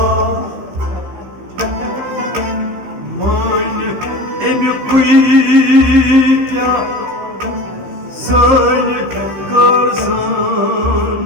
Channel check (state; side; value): late; left; 15 ms